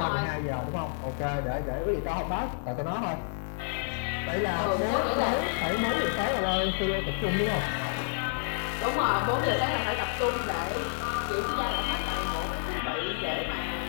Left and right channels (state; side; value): silent; right; digital silence